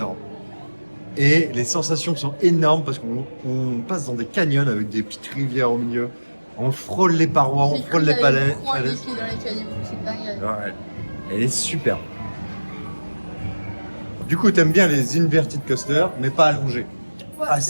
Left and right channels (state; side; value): inverted; both; correlation -1.00